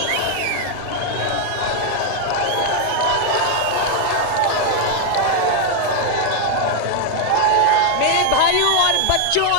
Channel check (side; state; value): both; different; correlation 0.00